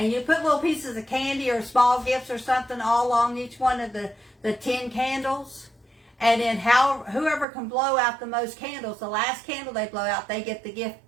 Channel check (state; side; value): drops out; left; at 7.5 s